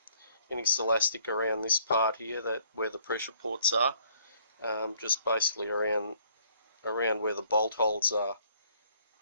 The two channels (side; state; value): both; inverted; correlation -0.63